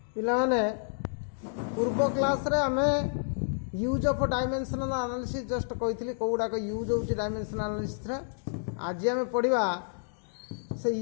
पिलाने पूर्व क्लास रे आमे use of dimensional analysis just कही कौड़ाक यूज हो डायमेंशनल एनालिसिस आज आम पढ़ा से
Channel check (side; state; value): right; silent; digital silence